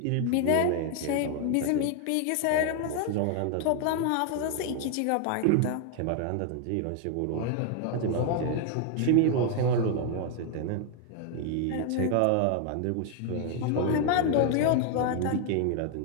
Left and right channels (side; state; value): both; different; correlation 0.00